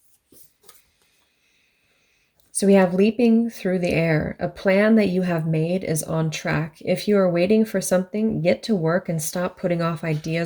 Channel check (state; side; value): identical; both; correlation 1.00